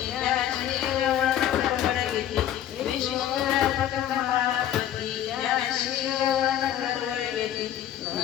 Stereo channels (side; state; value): right; quieter; 11.2 dB